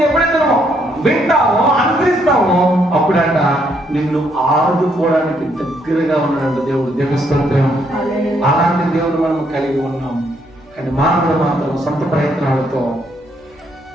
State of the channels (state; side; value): normal; both; correlation 0.72